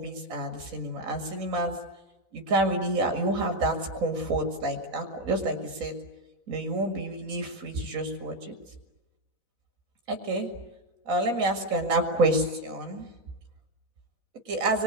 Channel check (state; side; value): late; left; 4.0 ms